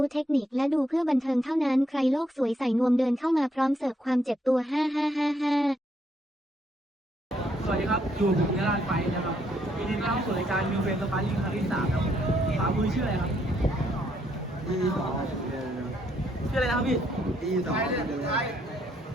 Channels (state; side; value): normal; both; correlation 0.73